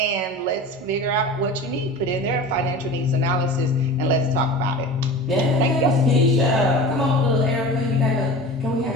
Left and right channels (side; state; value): both; normal; correlation 0.35